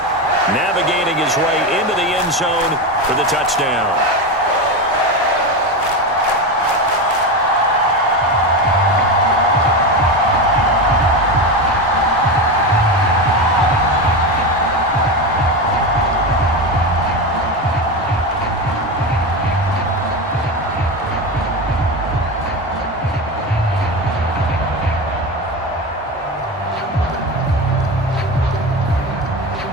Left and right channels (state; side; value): normal; both; correlation 0.19